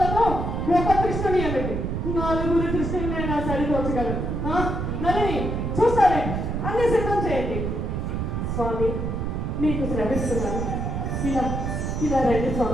ఒక కృష్ణుని ఏమిటి, నలుగురి కృష్ణుని నేను సరిపోచగలను. నలిని చూస్తారే, అన్ని సిద్ధం చేయండి. స్వామి మీకు శ్రమిస్తున్నాను. ఇలా ఇలా రండి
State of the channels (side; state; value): right; noise; rumble, 2 dB below the sound